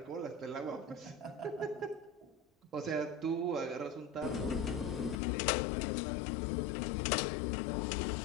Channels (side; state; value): right; drops out; at 5.2 s